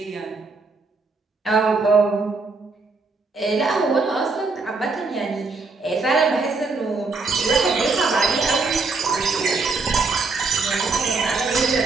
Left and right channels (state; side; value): quieter; left; 4.0 dB